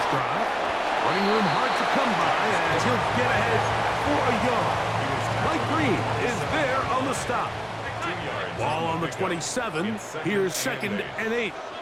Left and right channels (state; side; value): identical; both; correlation 1.00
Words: drive. Running room hard to come by as he'll get ahead for a yard. Mike Green is there on the stop. Ball on the 27. Here's 2nd and 8.